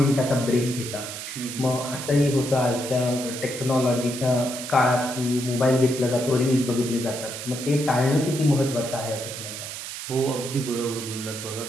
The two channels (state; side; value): noise; right; hiss, 8 dB below the sound